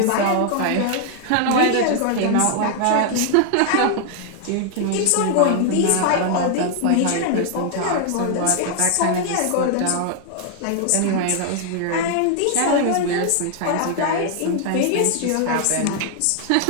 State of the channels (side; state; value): both; different; correlation 0.00